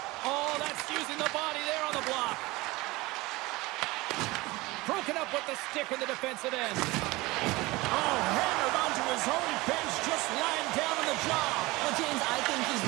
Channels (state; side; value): quieter; left; 21.4 dB